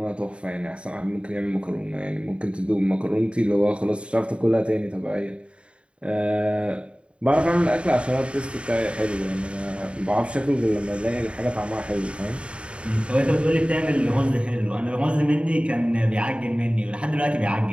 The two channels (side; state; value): left; late; 0.058 ms